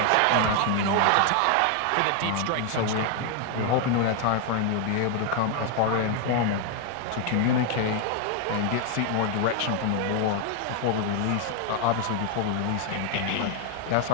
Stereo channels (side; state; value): both; different; correlation 0.00